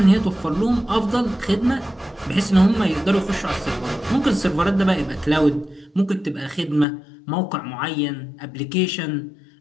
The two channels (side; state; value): right; drops out; at 6.9 s